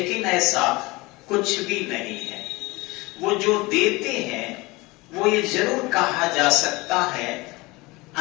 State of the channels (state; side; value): quieter; right; 22.9 dB